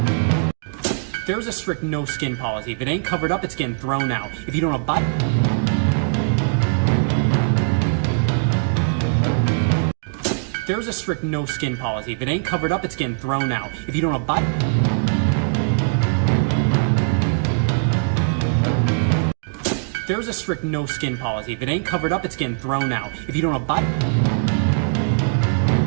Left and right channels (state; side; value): silent; left; digital silence